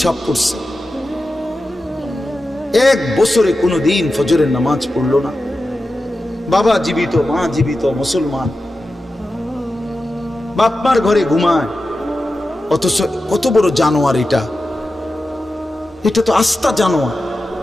পড়ছে। এক বছরে কোনো দিন ফজরের নামাজ পড়লো না। বাবা জীবিত, মা জীবিত, মুসলমান, বাপমার ঘরে ঘুমায়, অথচ কত বড় জানোয়ার এটা! এটা তো আস্তা জানোয়ার,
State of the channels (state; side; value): normal; both; correlation 0.92